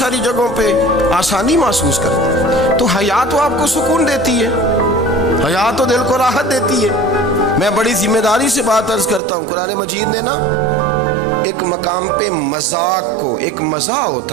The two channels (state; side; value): drops out; left; at 9.2 s